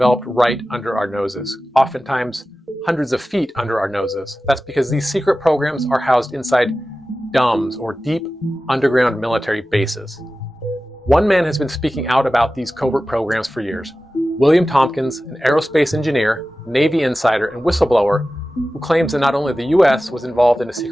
right under our noses, oftentimes hundreds of feet under our noses. That's because these secret programs are housed inside DUMBs, or deep underground military bases. One man has been speaking out about these covert programs for years. William Tompkins, an aerospace engineer, Navy insider, and whistleblower, who claims that not only the US was involved in a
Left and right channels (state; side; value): normal; both; correlation 0.95